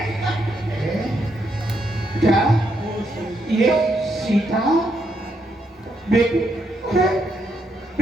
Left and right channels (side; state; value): both; normal; correlation 0.78